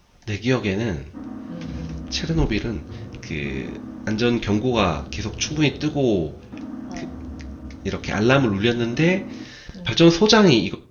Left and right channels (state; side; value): identical; both; correlation 1.00